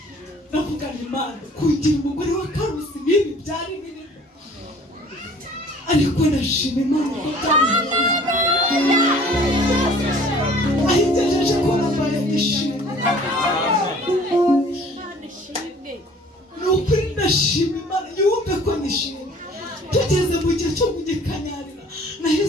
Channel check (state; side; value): normal; both; correlation 0.51